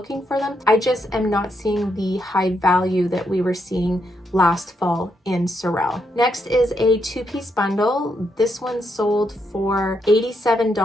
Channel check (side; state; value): both; normal; correlation 0.79